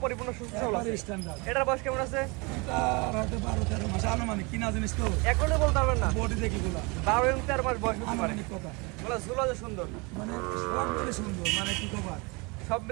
পরিপূর্ণ সুস্থ সবল আছে। স্ট্যান্ডার্ড। এটার বয়স কেমন আছে? এটা রাতে 12-13 মাস আনুমানিক। কিনা জিনিস তো এখনো বলতে পারবেন না। বডি দেখি গুলা 12 এবং 13 মাস বয়স হতে পারে। আনুমানিক কথা। বলা ঝুলা যে সুন্দর, মানে সব মিলে সুন্দর, মানে কি কবার সব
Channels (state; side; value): quieter; left; 28.4 dB